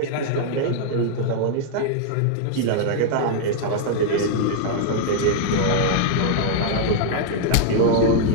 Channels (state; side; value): different; both; correlation -0.01